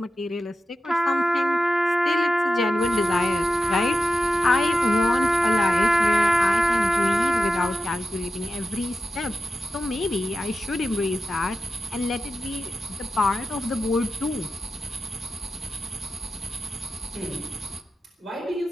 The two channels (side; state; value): both; normal; correlation 0.91